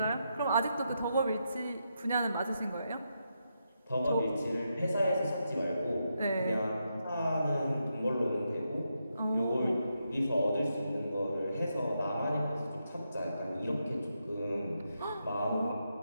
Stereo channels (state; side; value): inverted; both; correlation -0.83